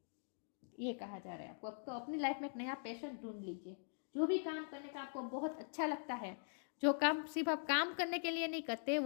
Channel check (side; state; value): right; silent; digital silence